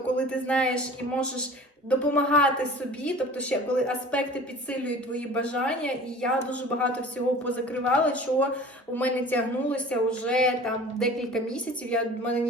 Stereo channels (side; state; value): both; normal; correlation 0.42